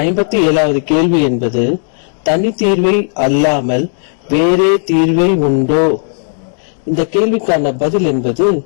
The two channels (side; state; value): right; silent; digital silence